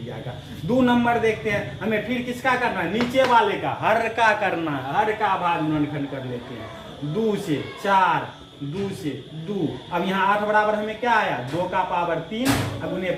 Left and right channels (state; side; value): identical; both; correlation 1.00